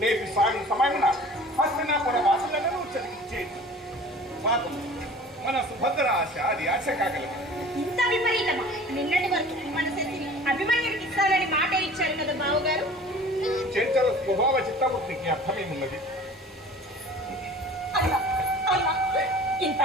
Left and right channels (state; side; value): normal; both; correlation 0.44